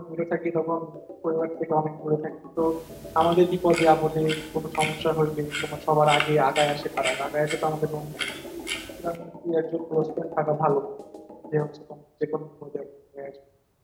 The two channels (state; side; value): identical; both; correlation 1.00